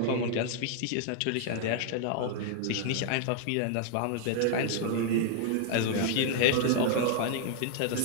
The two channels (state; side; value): different; both; correlation -0.01